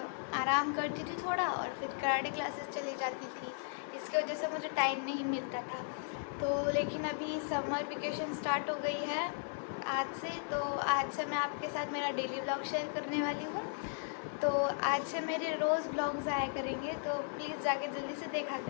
आराम करती थी थोड़ा और फिर कराटे क्लासेस चली जाती थी। इसकी वजह से मुझे टाइम नहीं मिलता था। तो लेकिन अभी समर वेकेशन स्टार्ट हो गई है आज से, तो आज से मैं आपके साथ मेरा डेली व्लॉग शेयर करने वाली हूँ। तो आज से मेरे रोज़ व्लॉग्स आया करेंगे, तो प्लीज़ जाके जल्दी से देखा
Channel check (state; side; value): silent; right; 54 dB below the other